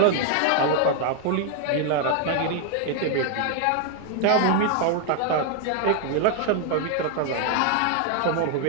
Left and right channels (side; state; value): both; different; correlation 0.00